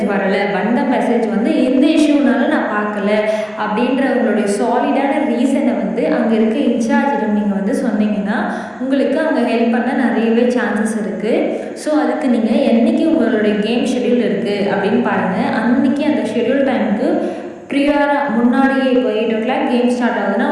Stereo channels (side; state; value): both; identical; correlation 1.00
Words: வரலை, வந்த மெசேஜ் வந்து இந்த இஷ்யூனால நான் பார்க்கல அப்படின்ற உங்களுடைய சாலிடான ரீசனை வந்து அங்கே இருக்க இன்சார்ஜிடம் நீங்கள் வந்து சொன்னீங்கன்னா உங்களுக்கு அவங்க ஹெல்ப் பண்ண நிறையவே சான்சஸ் இருக்குது. ஸோ அதுக்கு நீங்கள் என்றைக்கு உங்களுடைய கேம் ஷெட்யூல் இருக்குது அப்படின்னு பாருங்கள். அன்றைக்கி அந்த ஷெட்யூல் டைமுக்கு ப்ரியாராக முன்னாடியே இப்போ 8 o'clock கேம் ஸ்டார்ட் ஆகுதுன்னா